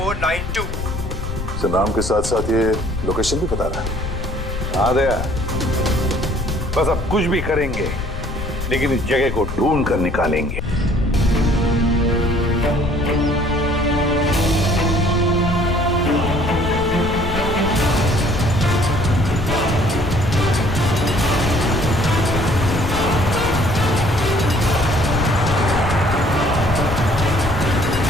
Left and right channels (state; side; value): noise; left; rumble, 6 dB below the sound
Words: Sir, नाम के साथ साथ ये लोकेशन भी बता रहा है। हाँ दया, बस अब कुछ भी करेंगे लेकिन इस जगह को ढूंढ कर निकालेंगे।